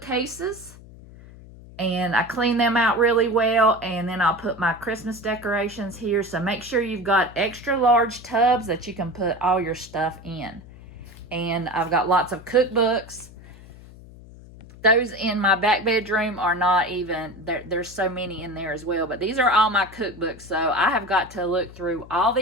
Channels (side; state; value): left; noise; hum, 19 dB below the sound